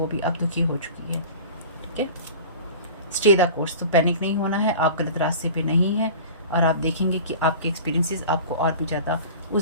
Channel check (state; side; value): inverted; both; correlation -0.38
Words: भी अब दुखी हो चुकी है, ठीक है। स्टे द कोर्स, तो पैनिक नहीं होना है, आप गलत रास्ते पे नहीं हैं और आप देखेंगे कि आपके एक्सपीरियंसेस आपको और भी ज़्यादा